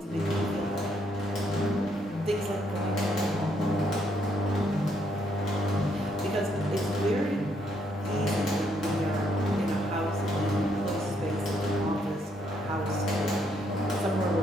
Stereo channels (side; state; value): both; normal; correlation 0.73